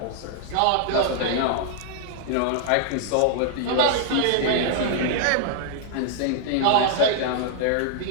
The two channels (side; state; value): both; different; correlation -0.01